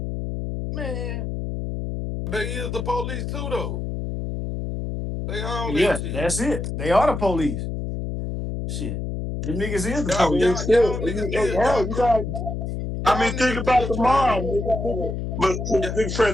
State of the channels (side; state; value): left; noise; hum, 4 dB below the sound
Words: Man, They is the police too, though. They all that Yeah, shit. that's it. They are the police. Shit. Them niggas is the I Y'all, mean, police. y'all, shit. y'all niggas did Hell, y'all you got. I y'all mean, think niggas about did the try mob, to. nigga. But Yeah, big